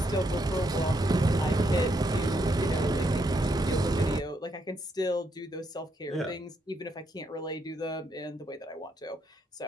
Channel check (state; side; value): normal; both; correlation 0.77